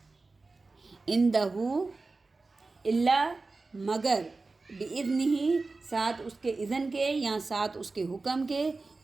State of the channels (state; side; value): quieter; left; 3.7 dB